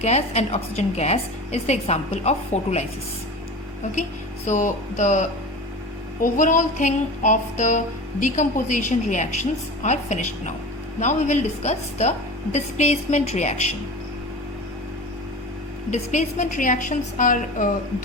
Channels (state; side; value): normal; both; correlation 0.33